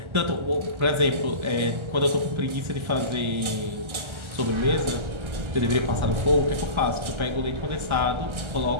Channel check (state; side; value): late; left; 1.4 ms